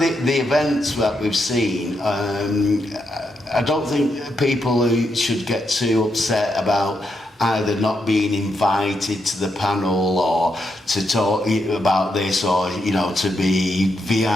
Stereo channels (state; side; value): normal; both; correlation 0.82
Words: events that we've seen, I don't think people who should get too upset about either not being invited to the panel or to talk about this, or, you know, to be